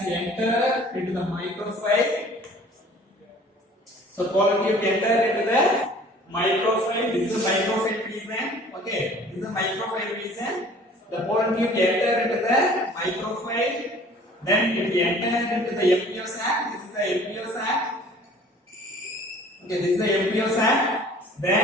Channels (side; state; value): both; normal; correlation 0.50